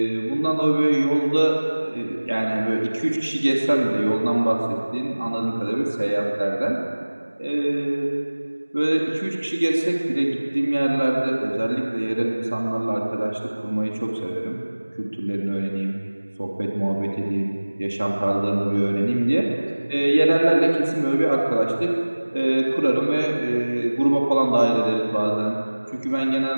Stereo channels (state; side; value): inverted; both; correlation -1.00